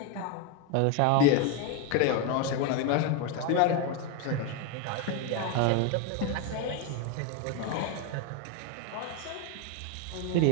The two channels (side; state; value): both; different; correlation 0.02